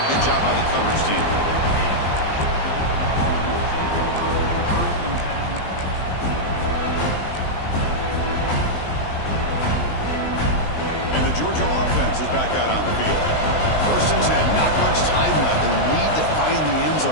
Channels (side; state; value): right; late; 20 ms